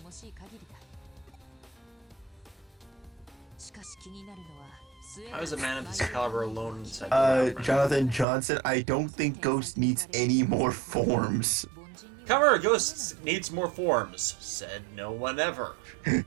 How is a man of this caliber alone inside the Jonathan Johnson, I don't think Ghost needs any more forms. Kamen Ghost needs more forms, said no one ever.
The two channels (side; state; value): left; drops out; at 8.2 s